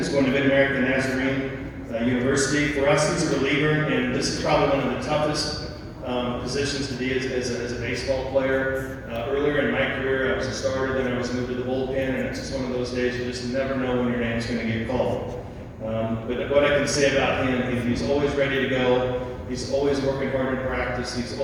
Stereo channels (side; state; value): both; identical; correlation 1.00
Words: going to Mid-American Nazarene University. For us, he's a reliever, and this is probably one of the toughest positions to be as a baseball player. Earlier in my career, I was a starter, then I was moved to the bullpen, and it's just one of those days you just never know when your name's going to get called. But what I can say about him, he's always ready to go. He's always working hard in practice. He's